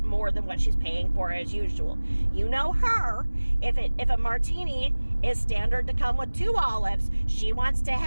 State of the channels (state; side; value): inverted; both; correlation -1.00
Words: more than what she's paying for as usual. You know her. If a martini is standard to come with 2 olives, she wants to